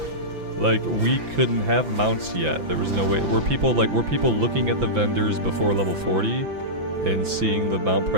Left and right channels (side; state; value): left; late; 5.9 ms